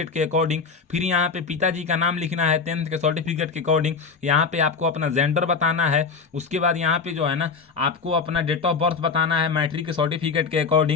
के अकॉर्डिंग। फिर यहाँ पे पिताजी का नाम लिखना है 10th के सर्टिफिकेट के अकॉर्डिंग। यहाँ पे आपको अपना जेंडर बताना है। उसके बाद यहाँ पे जो है ना आपको अपना डेट ऑफ बर्थ बताना है मैट्रिक के सर्टिफिकेट के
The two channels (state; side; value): quieter; right; 5.1 dB